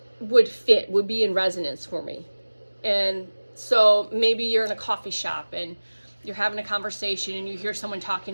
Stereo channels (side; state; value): both; inverted; correlation -1.00